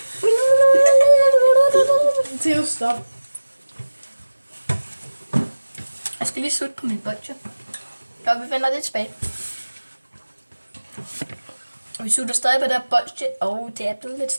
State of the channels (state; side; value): inverted; both; correlation -1.00